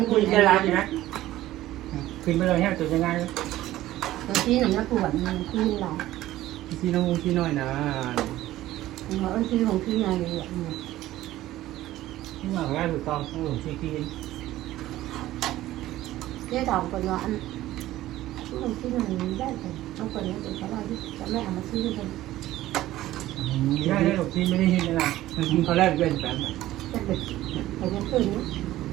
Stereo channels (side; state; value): left; quieter; 15.1 dB